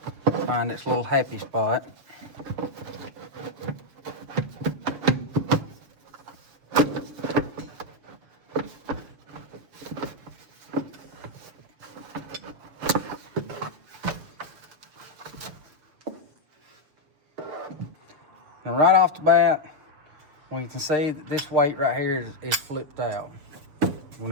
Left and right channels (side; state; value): left; late; 7.4 ms